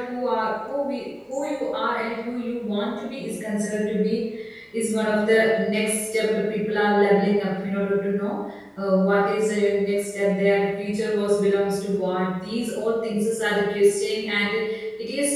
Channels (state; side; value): identical; both; correlation 1.00